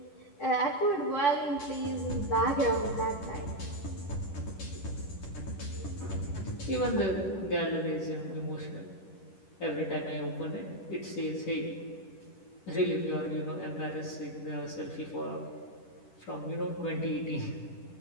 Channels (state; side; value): late; right; 10 ms